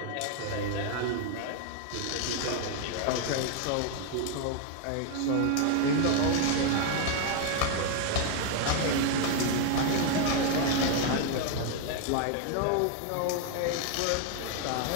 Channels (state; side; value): different; both; correlation 0.00